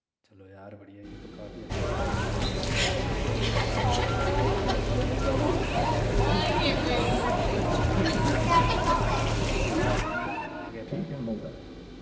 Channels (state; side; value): identical; both; correlation 1.00